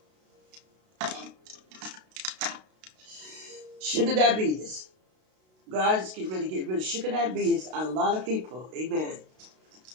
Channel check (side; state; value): left; late; 32 ms